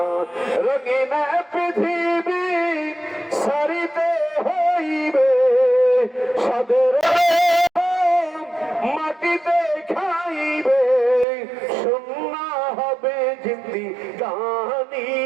রঙিন পৃথিবী সারি সারিতে হইবে সাদের মাটিতে খাইবে শূন্য হবে জিন্দি গানি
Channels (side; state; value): left; drops out; at 11.2 s